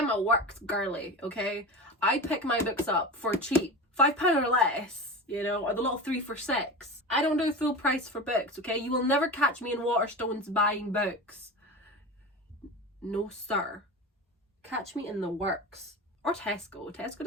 a works girly, okay? I pick my books up for cheap. £5 or less, you know, or the little 3 for £6. I don't do full price for books, okay? You will never catch me in Waterstones buying books. No sir. Catch me in the works. Or Tesco. Tesco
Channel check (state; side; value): normal; both; correlation 0.28